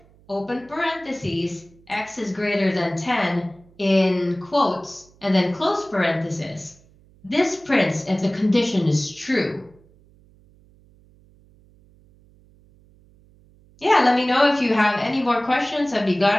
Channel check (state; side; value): noise; right; hum, 29 dB below the sound